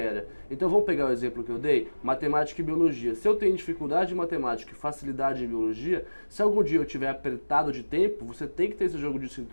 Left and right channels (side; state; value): both; inverted; correlation -1.00